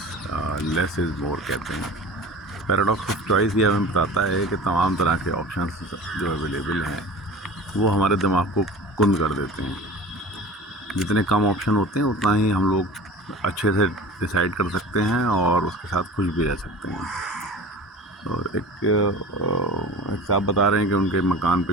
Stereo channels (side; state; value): both; normal; correlation 0.37